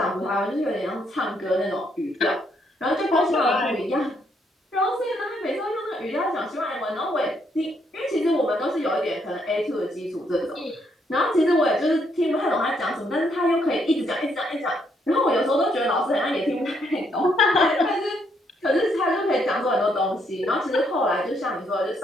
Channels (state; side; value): normal; both; correlation 0.73